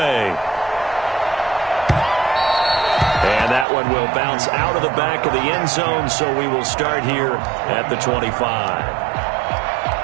And that one will bounce out of the back of the end zone, so we will start here at the 25.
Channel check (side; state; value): left; drops out; at 3.7 s